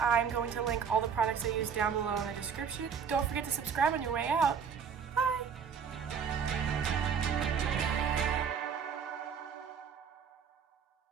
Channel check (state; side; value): quieter; left; 6.7 dB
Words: going to link all the products I use down below in the description. Don't forget to subscribe on your way out.